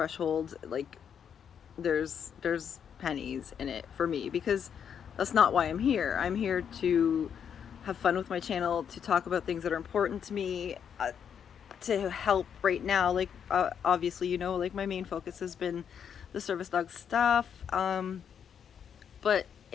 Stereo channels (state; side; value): quieter; right; 7.9 dB